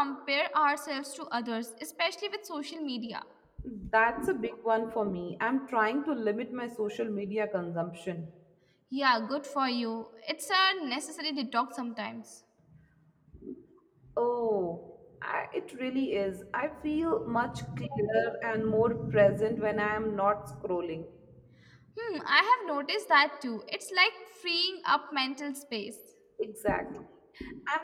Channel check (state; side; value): identical; both; correlation 1.00